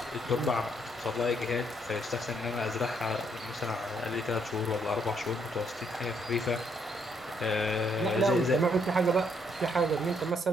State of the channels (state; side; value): normal; both; correlation 0.72